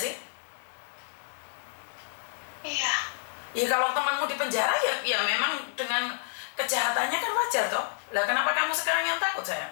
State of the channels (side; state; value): right; silent; digital silence